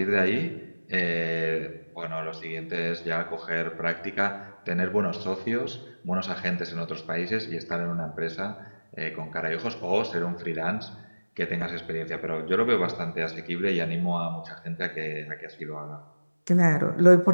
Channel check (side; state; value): both; inverted; correlation -1.00